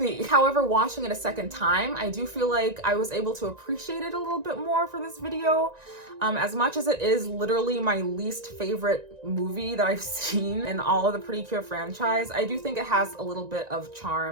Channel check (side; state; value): left; late; 1.9 ms